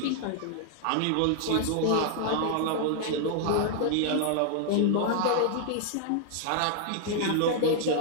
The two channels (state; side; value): different; both; correlation -0.01